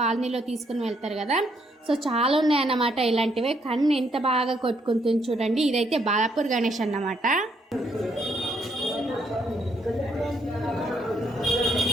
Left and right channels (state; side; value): normal; both; correlation 0.72